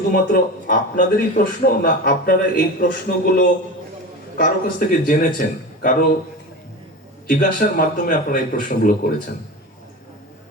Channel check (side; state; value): both; normal; correlation 0.28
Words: আপনাদেরই প্রশ্ন, না আপনারা এই প্রশ্নগুলো কারো কাছ থেকে জেনেছেন, কারো জিজ্ঞাসার মাধ্যমে আপনারা এই প্রশ্নগুলো করেছেন?